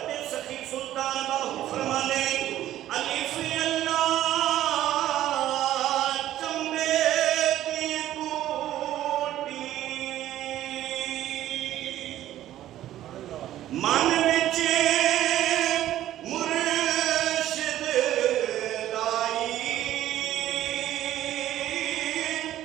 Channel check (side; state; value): left; quieter; 13.1 dB